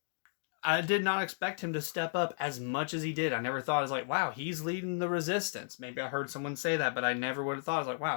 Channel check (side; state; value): right; silent; digital silence